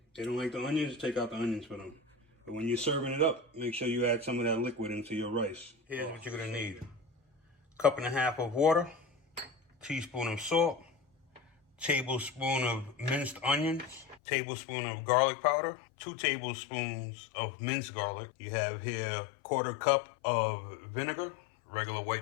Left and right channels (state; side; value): drops out; right; at 14.2 s